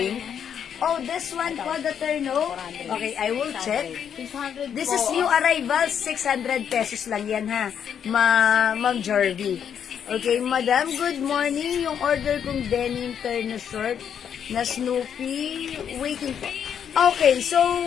Oh, this one po, the Terno. Okay, I will check. This is new arrival, 600 pesos lang yan ha, Ma'am Jarvie. Okay, Madam, good morning. Yung order kong denim Terno short na Snoopy, waiting po. Okay, so,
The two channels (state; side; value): quieter; right; 8.3 dB